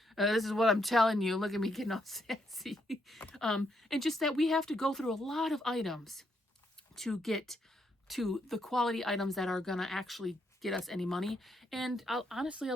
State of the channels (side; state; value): both; normal; correlation 0.76